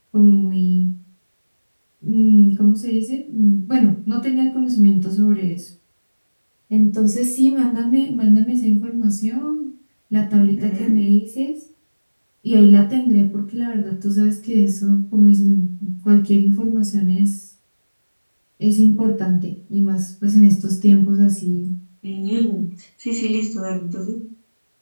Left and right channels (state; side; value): inverted; both; correlation -1.00